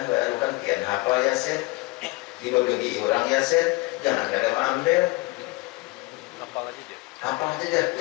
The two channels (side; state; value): right; quieter; 23.4 dB